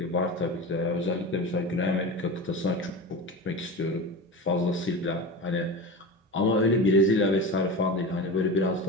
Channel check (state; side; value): normal; both; correlation 0.28